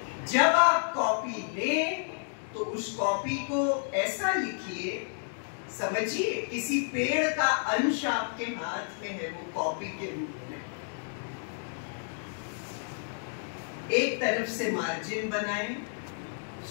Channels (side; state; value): right; silent; digital silence